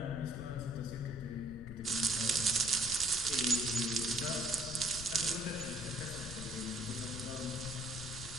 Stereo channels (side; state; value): left; noise; rumble, 11 dB below the sound